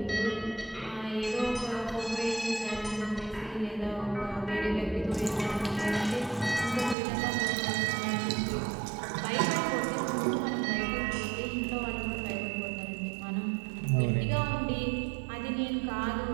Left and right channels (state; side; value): drops out; left; at 7.0 s